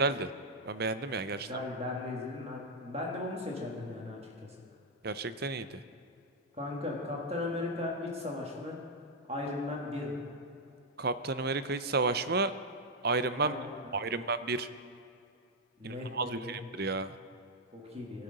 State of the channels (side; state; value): both; normal; correlation 0.00